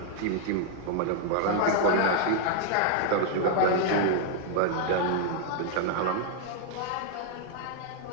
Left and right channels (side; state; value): both; different; correlation 0.00